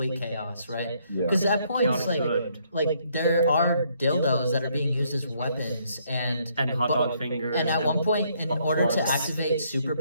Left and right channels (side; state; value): both; inverted; correlation -0.70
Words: chaos, right? Yeah. Because at points, Chaotic like there are dildos that are being used as weapons, and hot dog fingers. and at one point, in order to plugs. activate